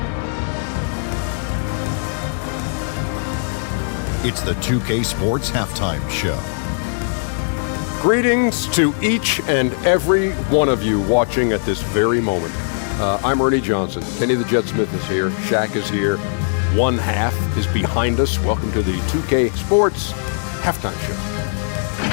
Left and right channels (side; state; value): right; silent; 57 dB below the other